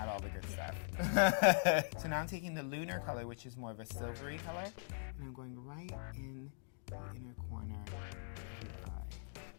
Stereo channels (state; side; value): silent; right; digital silence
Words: all the good stuff. So now I'm taking the lunar color, which is more of a silvery color, and I'm going right in the inner corner of your eye.